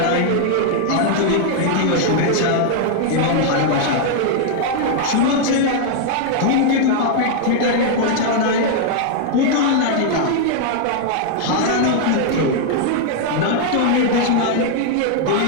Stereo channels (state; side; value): different; both; correlation 0.00